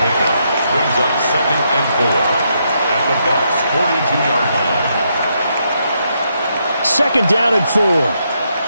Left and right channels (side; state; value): both; inverted; correlation -0.78